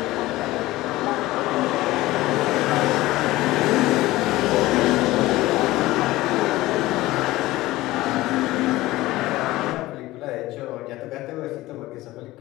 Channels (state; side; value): quieter; right; 17.9 dB